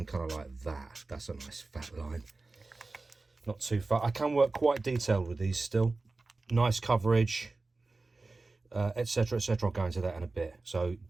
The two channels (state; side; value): quieter; left; 3.5 dB